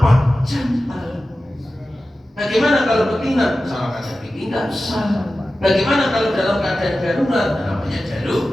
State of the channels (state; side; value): normal; both; correlation 0.94